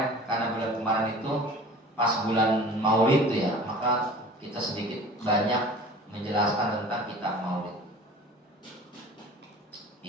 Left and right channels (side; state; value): both; normal; correlation 0.42